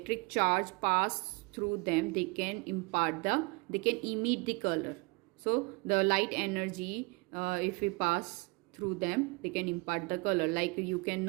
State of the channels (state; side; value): quieter; left; 28.8 dB